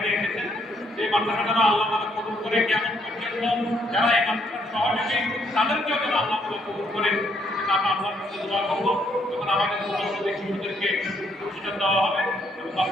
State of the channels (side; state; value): both; normal; correlation 0.71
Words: এসেছেন। এই মাদ্রাসাটা আল্লাহ তাআলা কবুল করে, কেমন পর্যন্ত যারা এই মাদ্রাসার সহযোগী তাদেরকেও যেন আল্লাহ তাআলা কবুল করে। আমরা আল্লাহর কাছে দোয়া করব, যখন আমাদের মুসলমানদের শিশুদেরকে প্রতিষ্ঠান দেওয়া হবে এবং